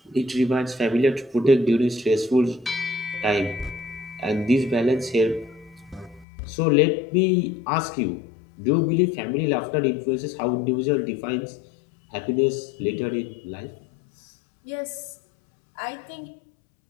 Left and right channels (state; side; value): drops out; right; at 6.2 s